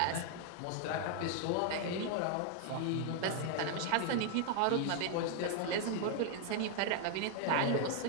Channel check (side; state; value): both; different; correlation 0.00